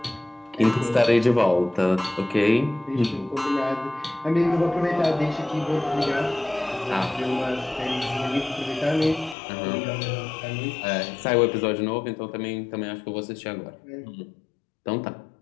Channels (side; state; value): right; drops out; at 9.3 s